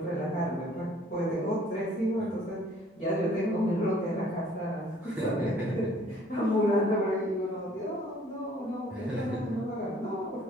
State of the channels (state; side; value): normal; both; correlation 0.57